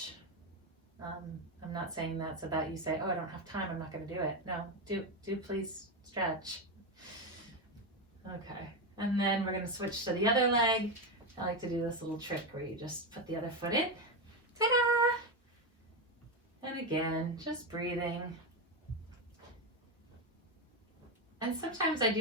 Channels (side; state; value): both; normal; correlation 0.11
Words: I'm not saying that so that you say, oh, I don't have time, I'm not going to do it. No, do please stretch. Okay, and then we're going to switch to the other leg. I like to do this little trick where you just put the other foot in. Ta-da! And again, just breathing. And sometimes I